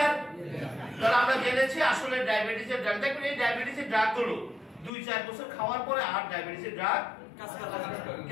তাহলে আমরা জেনেছি আসলে ডায়াবেটিসের ড্রাগ, দেখবেন এই ডায়াবেটিসের ড্রাগ গুলো 2-4 বছর খাওয়ার পরে আর ডায়াবেটিসের ড্রাগ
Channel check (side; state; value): right; drops out; at 4.9 s